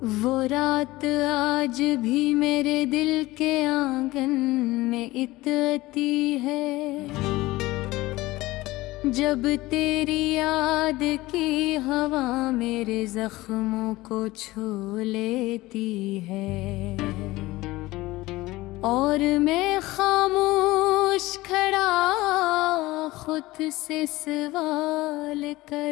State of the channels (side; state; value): right; quieter; 19.0 dB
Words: वो रात आज भी मेरे दिल के आंगन में इतती है, जब तेरी याद की हवा मेरे जख्मों को छू लेती है। और मैं खामोश खड़ा खुद से सवाल